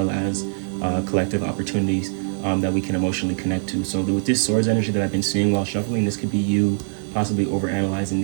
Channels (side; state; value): left; silent; digital silence